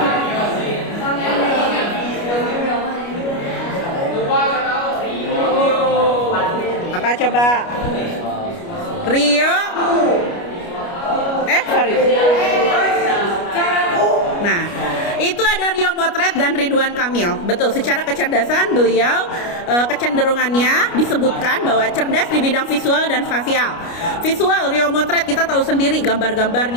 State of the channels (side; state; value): right; late; 29 ms